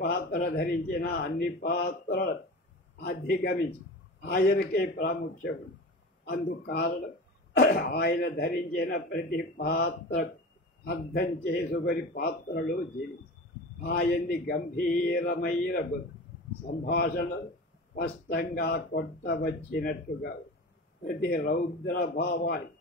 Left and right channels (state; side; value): normal; both; correlation 0.32